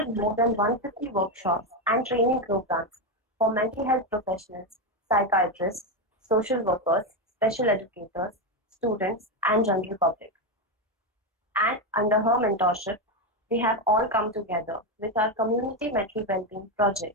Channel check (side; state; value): both; normal; correlation 0.09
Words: more than 150 workshops and training programs for mental health professionals, psychiatrists, social workers, special educators, students, and general public. And under her mentorship, we have all come together with our community mental well-being